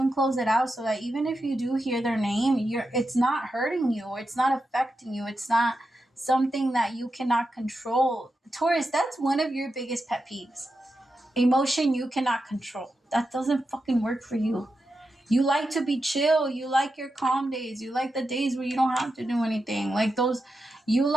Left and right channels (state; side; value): normal; both; correlation 0.88